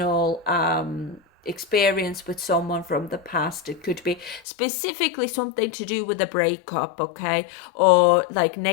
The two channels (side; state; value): right; drops out; at 4.4 s